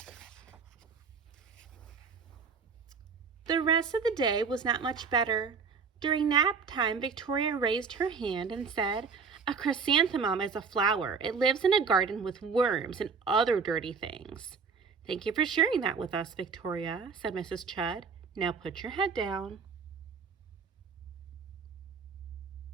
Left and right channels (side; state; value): left; quieter; 5.4 dB